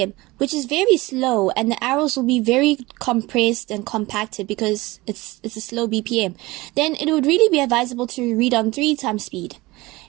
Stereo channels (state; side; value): quieter; left; 21.0 dB